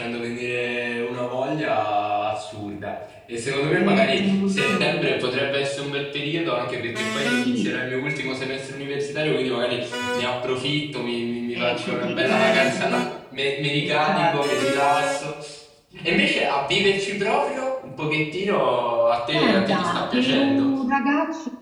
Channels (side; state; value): both; identical; correlation 1.00